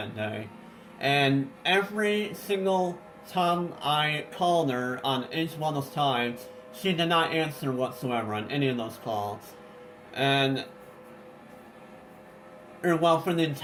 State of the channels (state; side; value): identical; both; correlation 1.00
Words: day. And every single time I called her on each one of those times, she did not answer whatsoever on any of those calls. And, well, for the